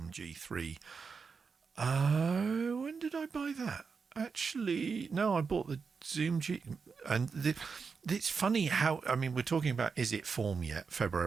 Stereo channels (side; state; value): left; quieter; 5.3 dB